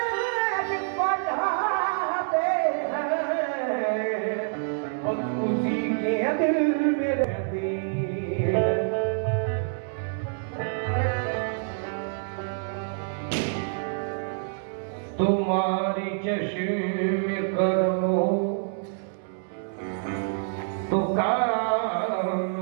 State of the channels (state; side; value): silent; left; 60 dB below the other